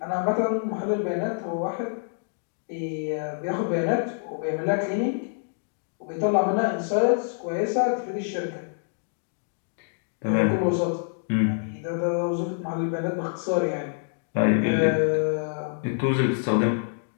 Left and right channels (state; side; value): silent; right; digital silence